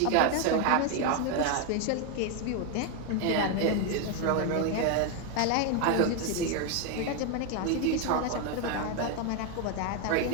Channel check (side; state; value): both; different; correlation 0.01